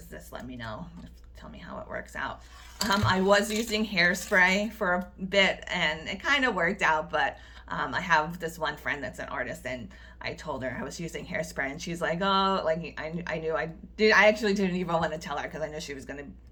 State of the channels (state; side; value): identical; both; correlation 1.00